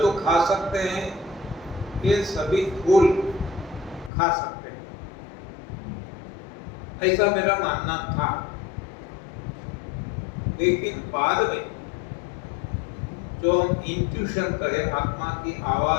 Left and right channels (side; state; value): right; drops out; at 4.1 s